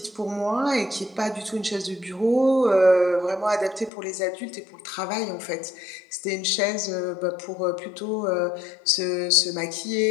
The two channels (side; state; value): right; drops out; at 3.9 s